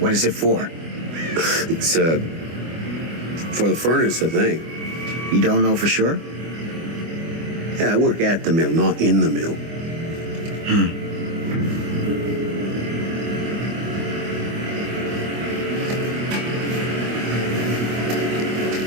is it for? It's, for the furnace, I think. You don't know for sure? Yeah, I work at the mill, not in the mill.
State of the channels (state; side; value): late; left; 24 ms